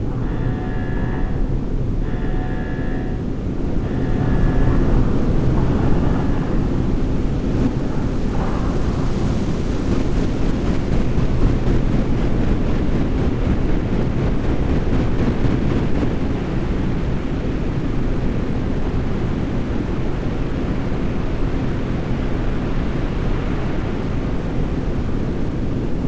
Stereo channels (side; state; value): both; identical; correlation 1.00